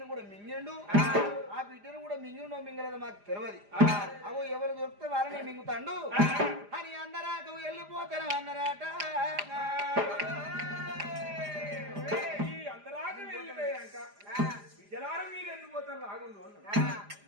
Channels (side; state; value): left; late; 4.9 ms